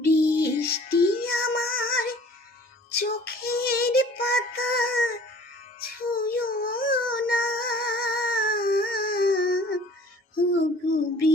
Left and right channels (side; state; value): both; normal; correlation 0.50